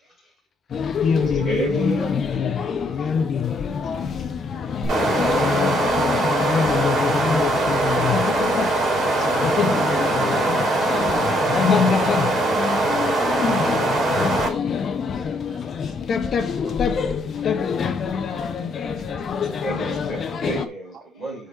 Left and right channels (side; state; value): both; normal; correlation 0.71